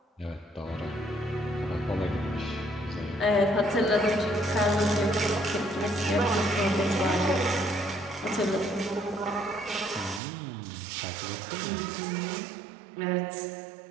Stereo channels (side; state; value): left; drops out; at 10.2 s